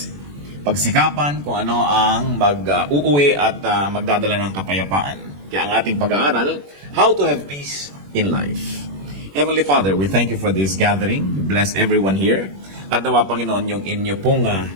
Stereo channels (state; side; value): late; left; 21 ms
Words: Pagsikapan kung ano ang mag-uuwi at magdadala ng kapayapaan. Kaya ang ating pag-aaral, how to have peace in life. Heavenly Father, we thank you for this gathering. Bless everyone here. At nawa, Panginoon, yung inyo pong